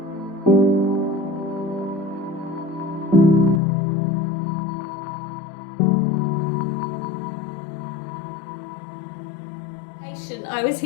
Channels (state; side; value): drops out; right; at 3.6 s